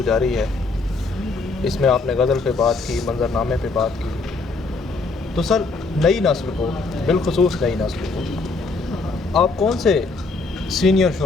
جاری ہے. اس میں آپ نے غزل پہ بات کی, منظر نامے پہ بات کی. تو سر نئی نسل کو, بالخصوص نئی نسل کو آپ کون سے سینئر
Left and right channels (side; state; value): right; quieter; 3.8 dB